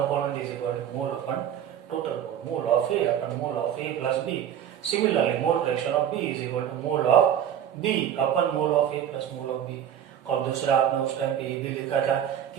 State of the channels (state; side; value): quieter; left; 9.8 dB